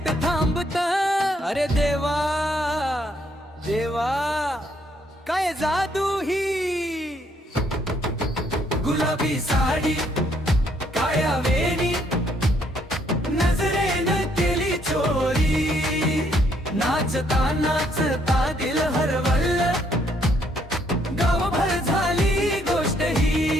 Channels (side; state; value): both; normal; correlation 0.70